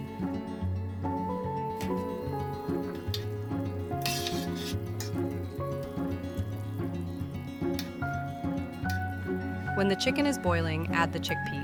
When the chicken is boiling, add the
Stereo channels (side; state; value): both; identical; correlation 1.00